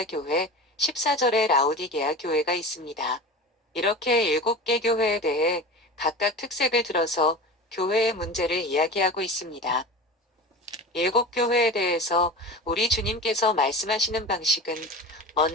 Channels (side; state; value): both; normal; correlation 0.32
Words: 교회, 14절에 라오디게아 교회가 있습니다. 이렇게 7개 교회에 대해 각각 특색을 들어서 교회의 문제를 이야기하고 있습니다. 7교회에 대해서 우리 주님께서 말씀하시는 방식은